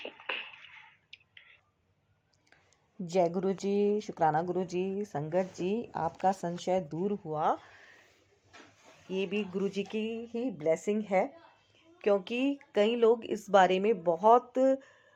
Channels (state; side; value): identical; both; correlation 1.00